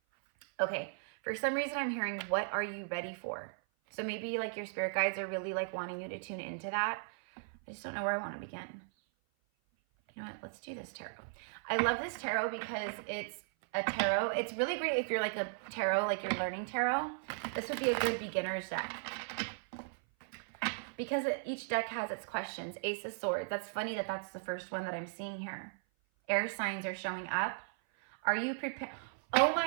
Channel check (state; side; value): silent; left; 53 dB below the other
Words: Okay, for some reason I'm hearing, what are you ready for? So maybe like your spirit guides are really like wanting you to tune into that. I just don't know where I want to begin. You know what, let's do this tarot. I love this tarot because it's a tarot. It's really great if you're like a tarot, like you're learning tarot. This would be a good beginner's deck. Because each deck has its questions. Ace of Swords. That's funny that that's the first one that I'm seeing here. Air signs are showing up. Are you prepared? Oh